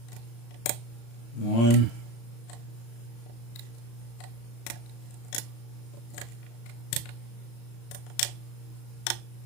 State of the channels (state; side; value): late; right; 35 ms